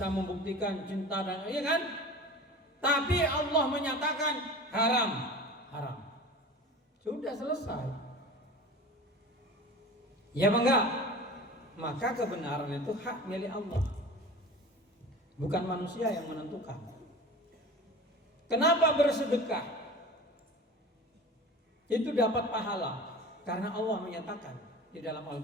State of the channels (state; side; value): normal; both; correlation 0.36